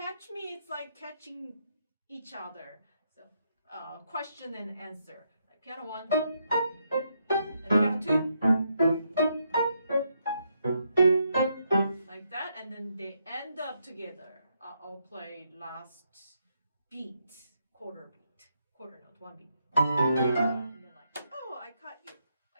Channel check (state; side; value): inverted; both; correlation -0.78